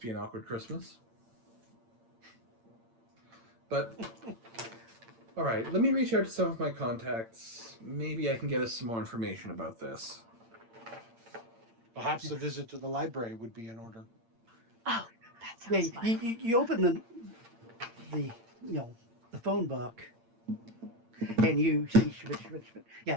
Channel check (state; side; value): late; left; 8.8 ms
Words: be an awkward Christmas. But, all right, let me reach out to some of my contacts. Maybe I can get us some more information about this. Perhaps a visit to the library would be in order. Oh, that Yeah, sounds fun. you open the the phone book, and you see Schmidt.